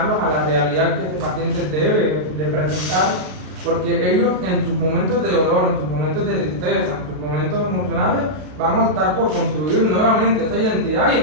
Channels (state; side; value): late; left; 33 ms